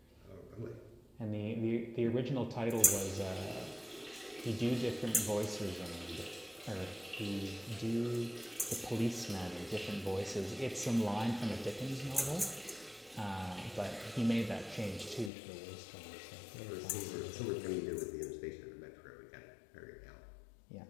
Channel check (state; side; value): drops out; right; at 15.3 s